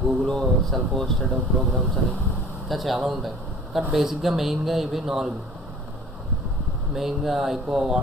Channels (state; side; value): normal; both; correlation 0.46